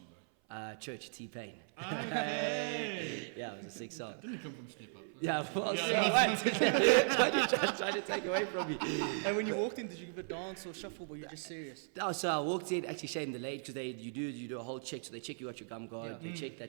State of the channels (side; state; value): left; silent; 53 dB below the other